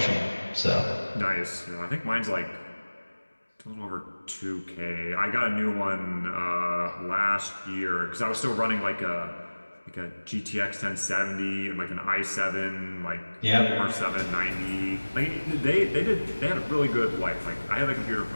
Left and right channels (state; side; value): inverted; both; correlation -1.00